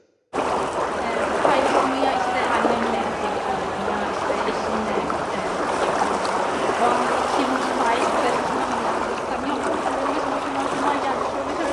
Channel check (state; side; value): identical; both; correlation 1.00